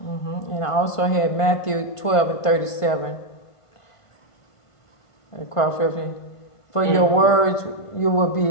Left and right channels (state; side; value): late; right; 1.5 ms